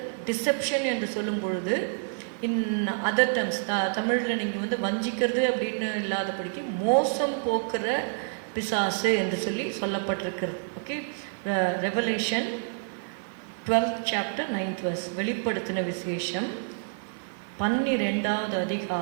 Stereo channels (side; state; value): left; silent; 59 dB below the other